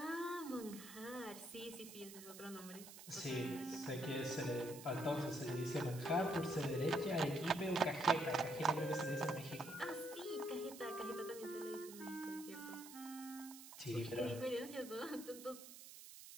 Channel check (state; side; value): noise; right; hiss, 14 dB below the sound